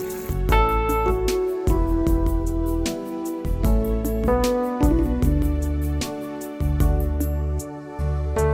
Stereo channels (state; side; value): identical; both; correlation 1.00